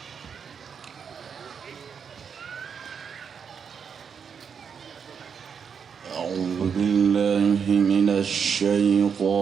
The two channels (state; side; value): quieter; left; 6.7 dB